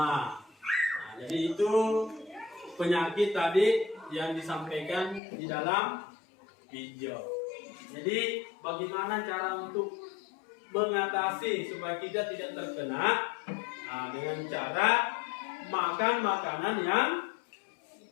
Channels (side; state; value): right; drops out; at 5.2 s